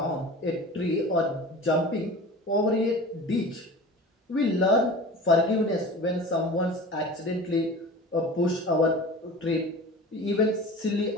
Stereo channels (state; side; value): normal; both; correlation 0.37